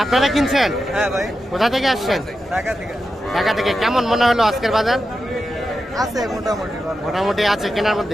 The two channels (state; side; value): normal; both; correlation 0.90